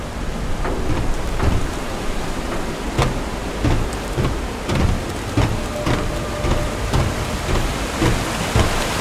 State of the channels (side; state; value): both; identical; correlation 1.00